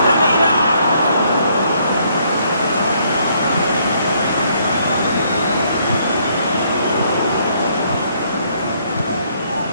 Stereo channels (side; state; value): both; inverted; correlation -0.68